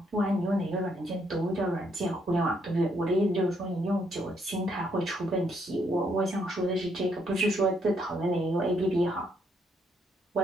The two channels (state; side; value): normal; both; correlation 0.73